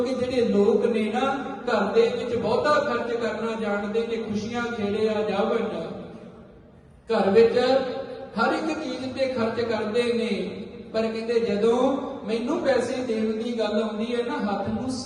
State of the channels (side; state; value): both; identical; correlation 1.00